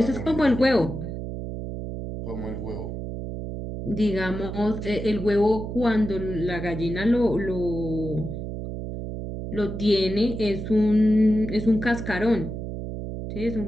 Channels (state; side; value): noise; right; hum, 6 dB below the sound